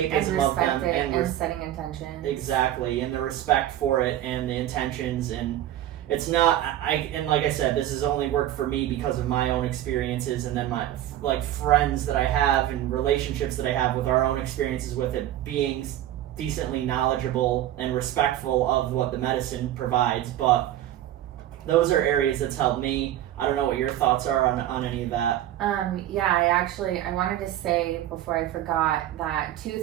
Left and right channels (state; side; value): quieter; left; 12.7 dB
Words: of them, and setting intentions. Exactly, and the respect for it and the intentions. And it's not, and like I said, this has only worked for me because of my own experiences, and then my like friends that I have and relationships that I have with our own experiences with it, being decently knowledgeable and respectful of what the medicine provides. But those are areas that's helped me. I don't know what your thoughts are on any of that. I wanted to say before I forgot that